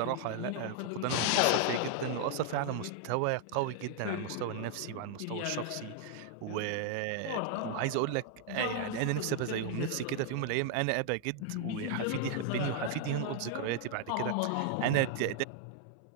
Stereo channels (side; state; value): both; different; correlation 0.00